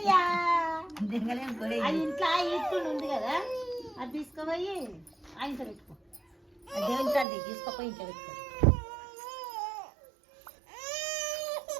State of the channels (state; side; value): drops out; left; at 7.2 s